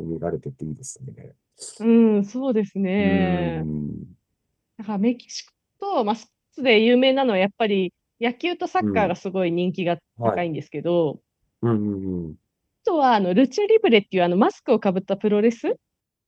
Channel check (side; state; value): both; identical; correlation 1.00